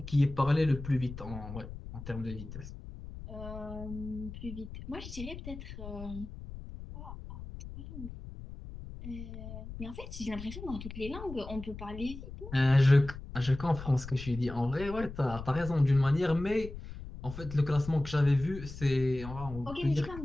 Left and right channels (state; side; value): noise; left; rumble, 11 dB below the sound